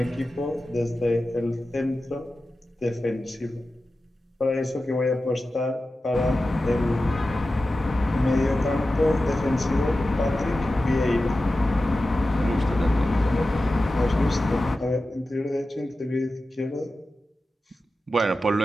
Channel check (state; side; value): normal; both; correlation 0.94